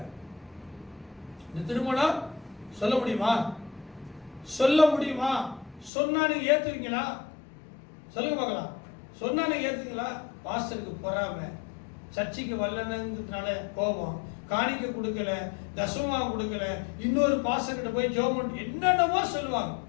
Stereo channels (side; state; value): right; drops out; at 5.9 s